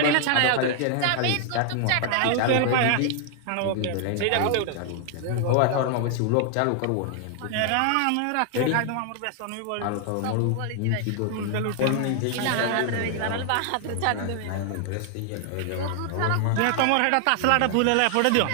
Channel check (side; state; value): both; different; correlation 0.00